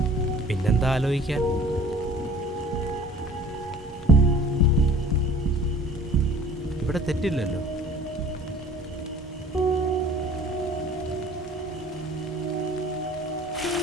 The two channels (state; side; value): normal; both; correlation 0.49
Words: പിന്നെന്താ ആലോചിക്കാൻ? ഇവിടെ തെറ്റില്ലല്ലോ.